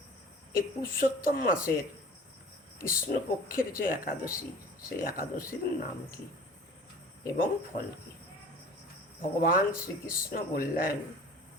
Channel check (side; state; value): both; normal; correlation 0.44